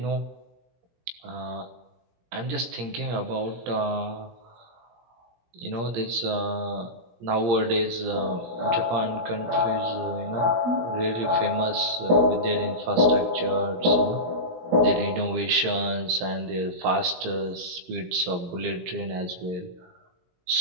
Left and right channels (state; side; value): late; left; 17 ms